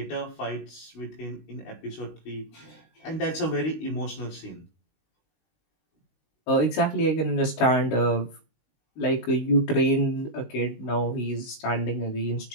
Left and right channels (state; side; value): late; right; 19 ms